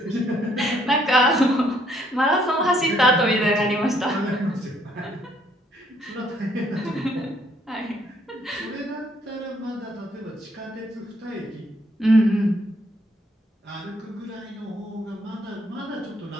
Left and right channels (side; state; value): both; normal; correlation 0.67